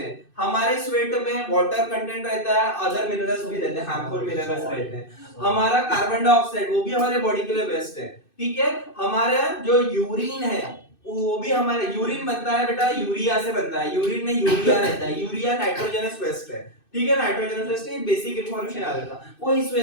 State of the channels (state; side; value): late; right; 2.6 ms